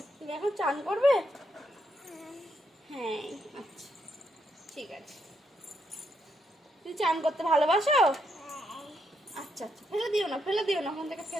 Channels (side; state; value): both; normal; correlation 0.78